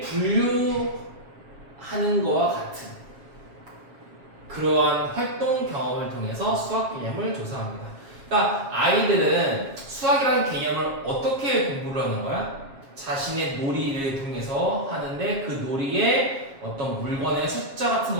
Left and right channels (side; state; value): left; late; 7.4 ms